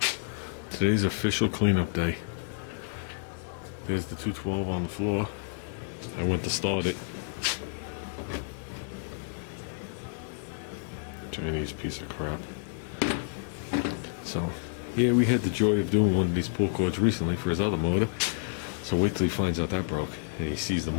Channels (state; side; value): silent; right; digital silence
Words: Today's official cleanup day. There's the 212 on the floor. I went to start it. Chinese piece of crap. So, yeah, we had the joy of doing one of these pull cords recently for his other motor. So wait till he finds out that broke and he sees the